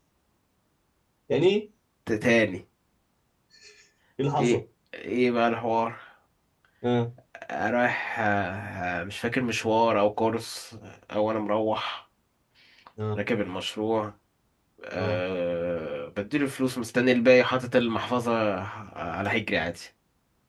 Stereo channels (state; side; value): identical; both; correlation 1.00